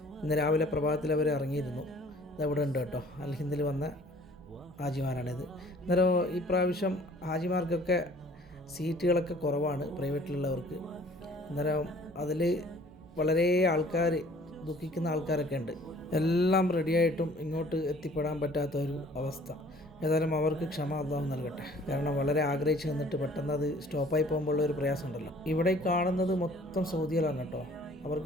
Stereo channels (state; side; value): normal; both; correlation 0.54